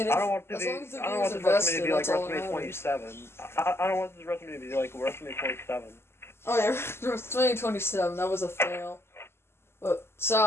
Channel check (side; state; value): right; late; 0.12 ms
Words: I don't want this WrestleMania to be like WrestleMania 27. I don't want this WrestleMania to be like WrestleMania 27. Oh yeah, WrestleMania 27, that was a fail. But,